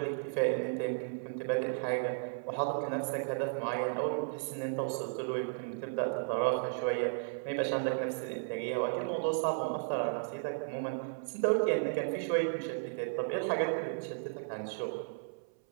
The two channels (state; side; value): silent; left; 55 dB below the other